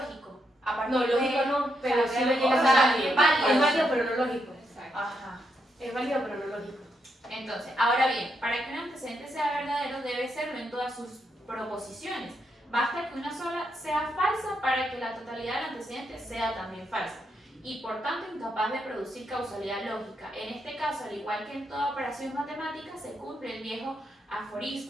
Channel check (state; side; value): normal; both; correlation 0.80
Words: A partir No, lógico de... no, pero sí lo o llegas sea, a ser válido. Es válido, pero no lógico. Exacto. Ajá. Es válido, pero no lógico. Entonces, ahora bien, para que un antecedente sea verdadero debe serlo en todas sus proposiciones. Basta que una sola sea falsa para que la totalidad del antecedente sea también falsa y por tanto incapaz de producir causalidad lógica. En este caso, al igual que en toda operación matemática, se cumple el viejo